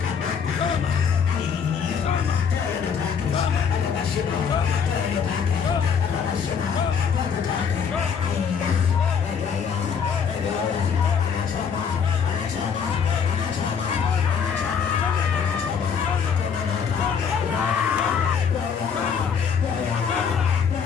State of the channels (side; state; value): right; quieter; 6.7 dB